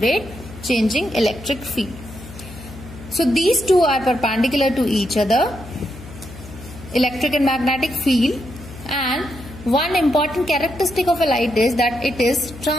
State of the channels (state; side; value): noise; left; hum, 16 dB below the sound